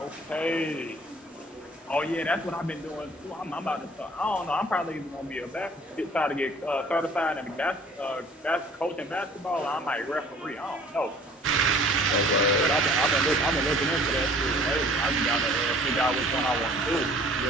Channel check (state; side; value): normal; both; correlation 0.52